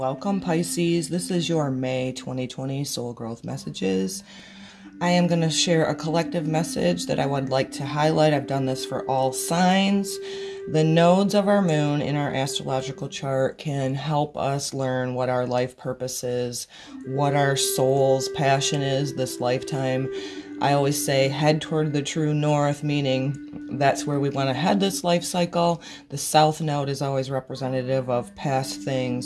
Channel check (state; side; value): identical; both; correlation 1.00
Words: Pisces. This is your May 2020 Soul Growth Messages. I am going to share a collective message that I would like to highlight. I've done this for all signs. The nodes of our moon in our astrological chart can help us learn what our life purpose is, what our soul's passion is this lifetime. I always say head toward the true north, meaning that's where we want to head this life cycle. The south node is always representative of past